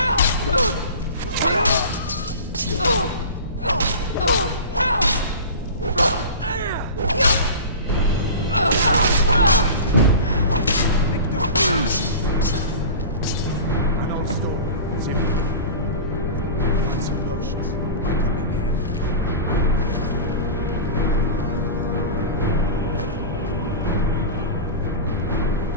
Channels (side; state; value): both; inverted; correlation -0.33